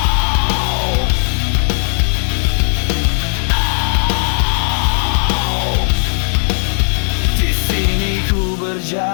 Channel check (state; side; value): silent; right; digital silence